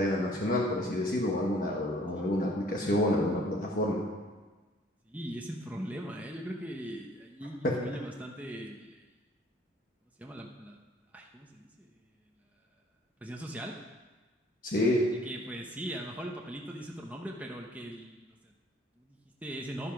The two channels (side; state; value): both; normal; correlation 0.57